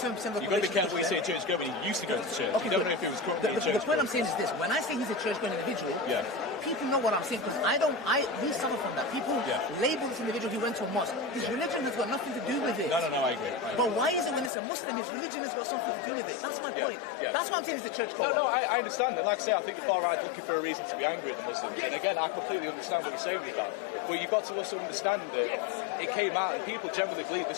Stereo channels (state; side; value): drops out; right; at 14.5 s